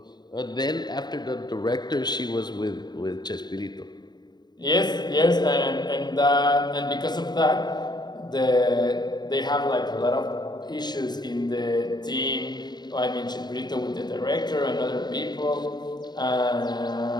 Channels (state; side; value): late; right; 0.20 ms